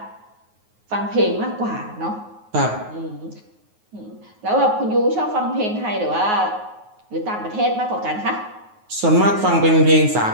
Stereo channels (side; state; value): left; late; 9.4 ms